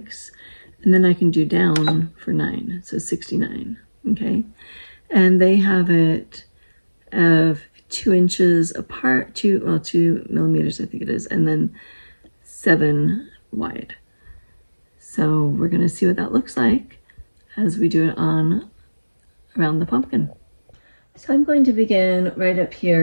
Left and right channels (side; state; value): both; inverted; correlation -1.00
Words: and then I can do down for 9, so 69, okay? And they have it of 2 inches apart, 2 millimeters I think it is, and then 7 wide. So we're going to see what that looks like as we do it on around the pumpkin. So I'm going to begin right up